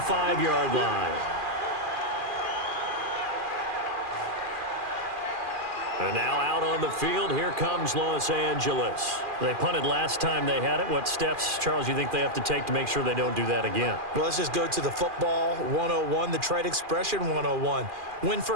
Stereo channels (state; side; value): late; left; 2.4 ms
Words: line. And now out on the field, here comes Los Angeles. They punted last time they had it. What steps, Charles, you think they have to take to make sure they don't do that again? Well, let's just go to the football 101, the trite expression 101. Win